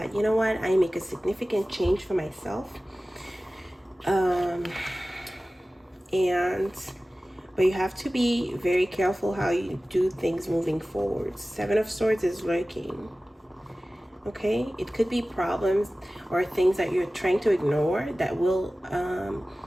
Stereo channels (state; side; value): normal; both; correlation 0.97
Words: you know what, I make a significant change for myself. But you have to be very careful how you do things moving forward. 7 of Swords is lurking. Okay, it could be problems or things that you're trying to ignore that will